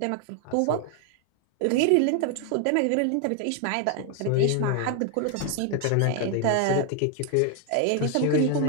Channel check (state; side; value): different; both; correlation 0.01